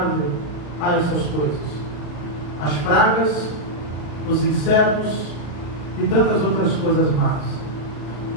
a essas coisas. As pragas, os insetos e tantas outras coisas más.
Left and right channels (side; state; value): right; late; 34 ms